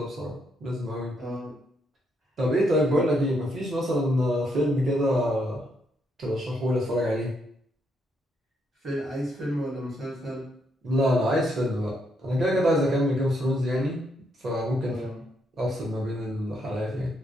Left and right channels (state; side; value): normal; both; correlation 0.76